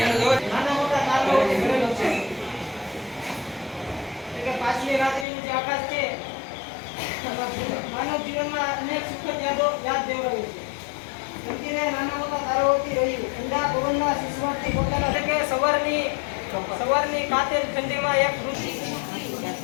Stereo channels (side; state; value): right; drops out; at 5.2 s